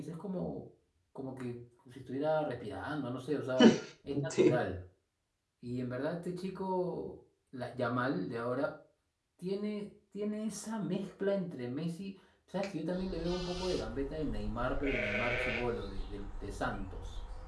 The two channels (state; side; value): identical; both; correlation 1.00